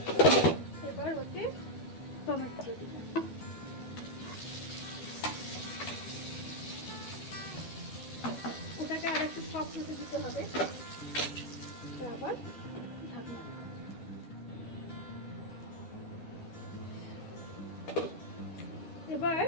এবার ওতে টমেটো দিলাম। ওটাকে আর একটু সফট হতে দিতে হবে, আবার ঢাকনা। এবার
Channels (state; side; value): late; right; 12 ms